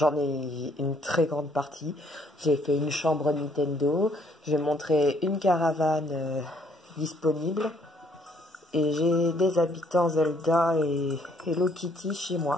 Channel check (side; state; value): both; normal; correlation 0.66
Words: ai une très grande partie. J'ai fait une chambre Nintendo, j'ai montré une caravane disponible et j'ai des habitants Zelda et Hello Kitty chez